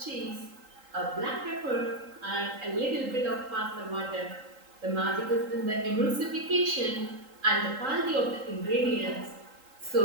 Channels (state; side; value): late; left; 3.8 ms